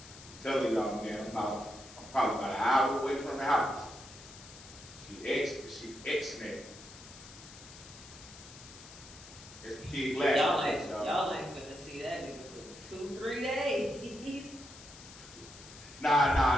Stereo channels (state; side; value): noise; left; hiss, 17 dB below the sound